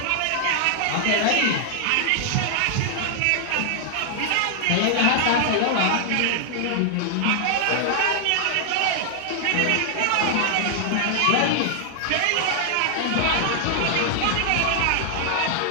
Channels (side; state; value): both; different; correlation 0.00